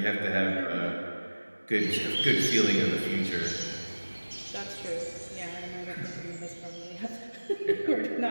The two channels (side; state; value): both; inverted; correlation -1.00